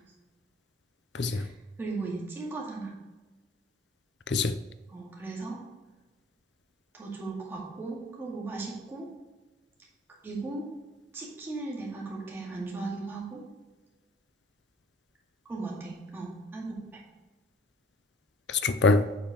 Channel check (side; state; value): both; normal; correlation 0.54